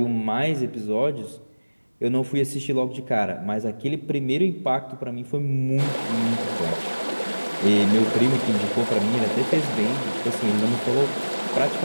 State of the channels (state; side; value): inverted; both; correlation -1.00